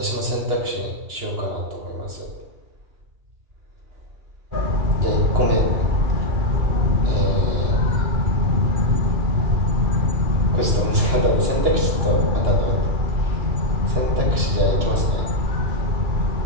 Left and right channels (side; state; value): left; late; 2.9 ms